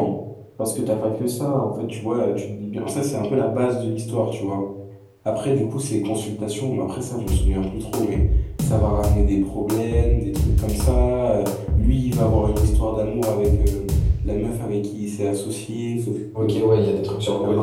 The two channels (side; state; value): both; identical; correlation 1.00